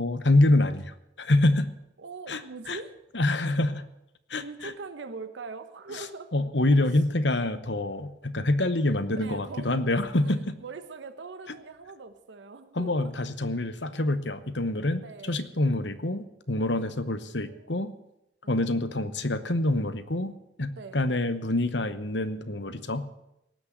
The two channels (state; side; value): normal; both; correlation 0.68